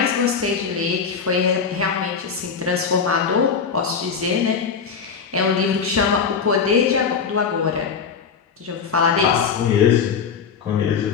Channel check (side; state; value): right; quieter; 6.1 dB